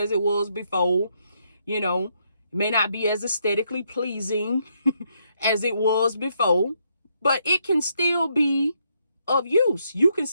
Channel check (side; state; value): both; inverted; correlation -0.76